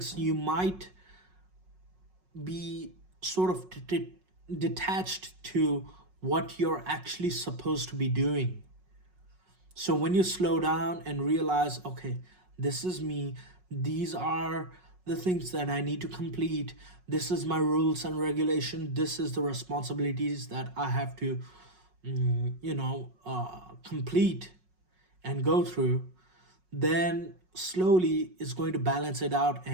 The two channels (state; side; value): late; left; 5.4 ms